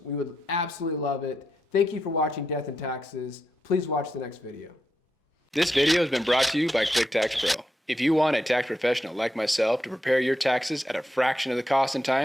We would absolutely love it. Thank you for watching Death and Taxes. Please watch the next video. This video has been brought to you by QuickTax Pro. If you want a tax professional like myself to prepare your taxes at a fraction of the cost and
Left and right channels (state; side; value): normal; both; correlation 0.84